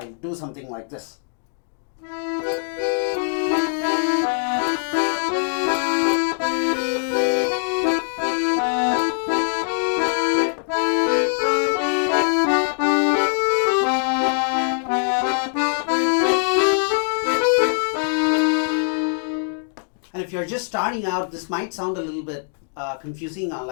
do something like this. And if you're just starting out, this might sound a little bit confusing on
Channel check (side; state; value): right; silent; 64 dB below the other